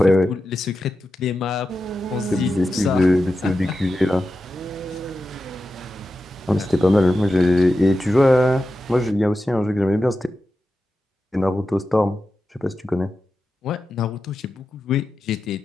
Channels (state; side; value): normal; both; correlation 0.91